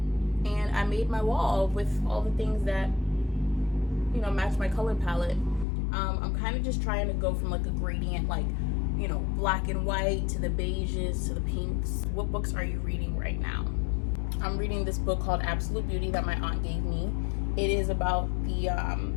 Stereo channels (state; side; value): drops out; right; at 5.7 s